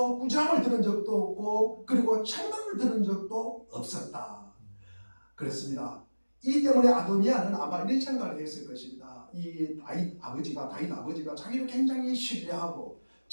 꾸지람을 들은 적도 없고 그리고 책망을 들은 적도 없었다. 그렇습니다. 이 때문에 아도니아는 아마 이런 생각을 했을 것입니다. 이 다윗 아버지가 자기를 굉장히 신뢰하고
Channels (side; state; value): both; inverted; correlation -1.00